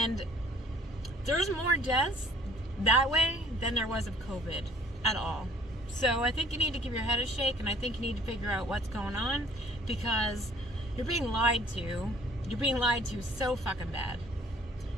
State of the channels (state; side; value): normal; both; correlation 0.56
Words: there's more deaths that way than there was of COVID at all. So I think you need to give your head a shake, and I think you need to figure out what's going on, because you're being lied to. You're being lied to so fucking bad.